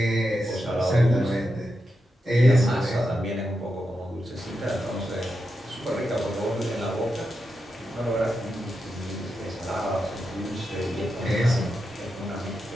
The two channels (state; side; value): normal; both; correlation 0.87